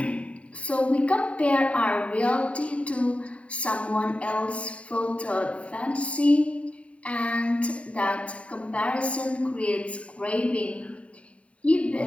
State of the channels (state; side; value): late; right; 0.064 ms